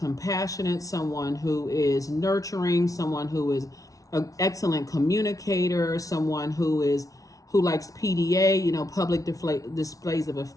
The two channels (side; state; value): right; late; 0.17 ms